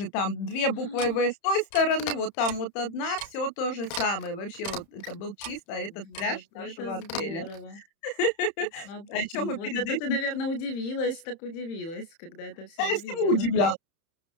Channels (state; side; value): late; right; 31 ms